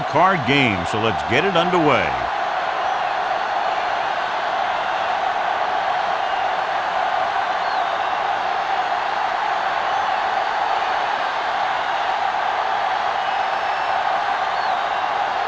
game, so let's get it underway.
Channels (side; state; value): both; identical; correlation 1.00